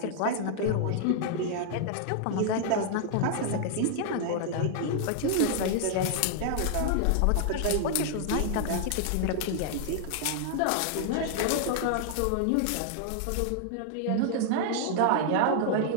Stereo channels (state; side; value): different; both; correlation -0.01